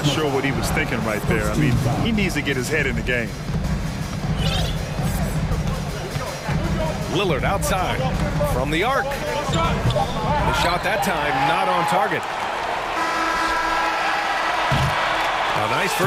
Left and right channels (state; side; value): identical; both; correlation 1.00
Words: sure what he was thinking right there. I mean, he needs to get his head in the game. Lillard outside from the arc. The shot that time not on target. A nice